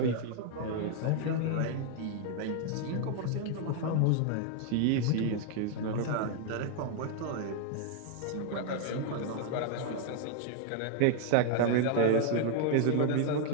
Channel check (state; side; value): different; both; correlation 0.00